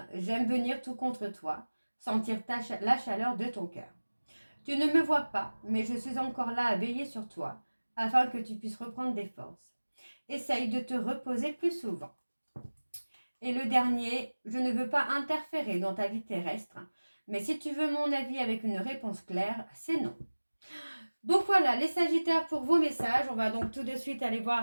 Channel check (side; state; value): both; inverted; correlation -1.00